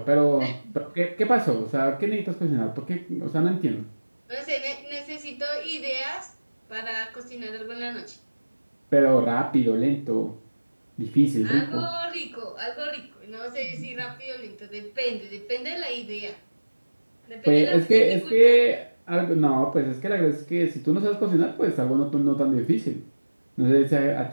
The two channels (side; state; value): both; inverted; correlation -1.00